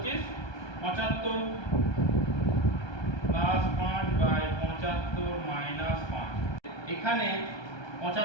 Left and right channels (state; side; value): late; right; 1.2 ms